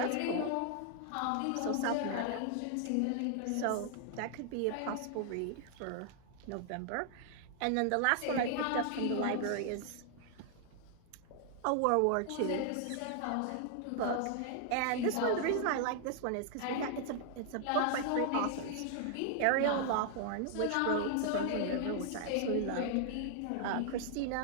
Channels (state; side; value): different; both; correlation 0.00